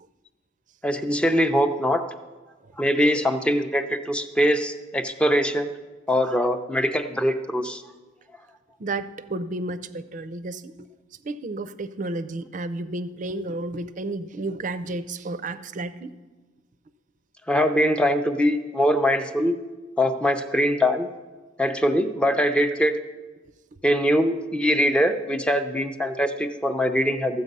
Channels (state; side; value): normal; both; correlation 0.76